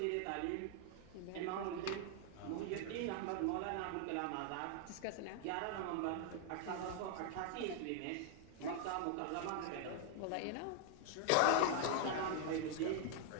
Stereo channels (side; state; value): both; different; correlation 0.00